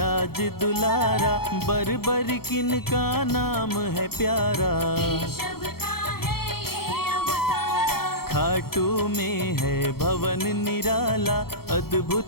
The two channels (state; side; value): late; right; 0.95 ms